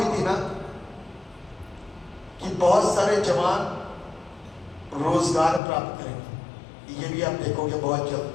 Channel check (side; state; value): right; drops out; at 5.6 s